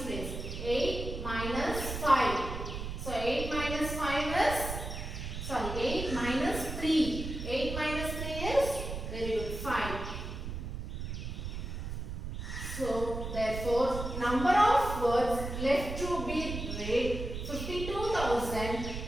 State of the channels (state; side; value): noise; right; rumble, 6 dB below the sound